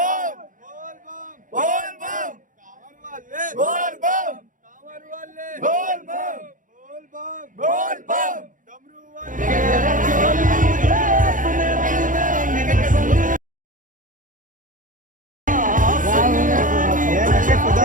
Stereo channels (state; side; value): late; left; 0.38 ms